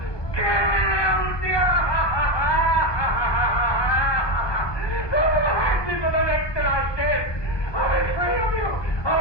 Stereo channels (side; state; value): right; late; 1.2 ms